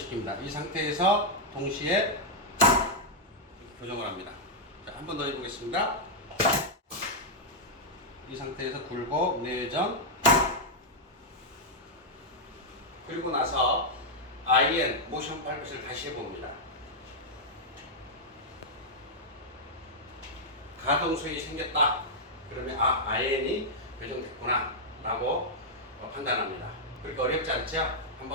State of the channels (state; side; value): normal; both; correlation -0.04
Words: 이 상태에서 동시에 교정을 합니다. 자, 한 번 더 해보겠습니다. 이 상태에서 굴곡, 내전, 그리고 나서 IN 모션 팔페이션을 다시 해봅니다. 가동성이 생겼다. 그러면 IN이 교정됐구나 라고 판단합니다. 그렇게 어렵지 않죠?